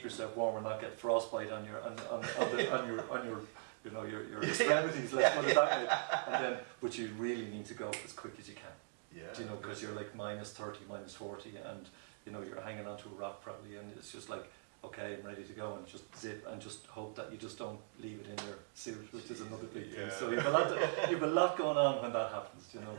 yourself warm and not get frostbite on your you know, your extremities. Let's put it that way. And then, but you really need to go as quick as you can. Yeah. Do you know, because you're like -30, -40, and you know you're hanging onto a rock probably, and it's just like, okay, I'm ready to go, and just zip and just hope that you just don't leave it in your suit, which is another big thing. So you've a lot going on when that happens. You know,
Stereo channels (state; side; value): silent; left; digital silence